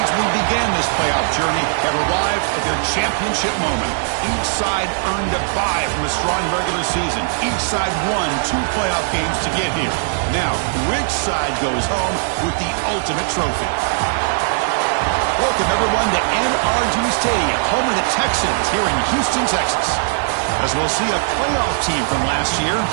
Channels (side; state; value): left; silent; digital silence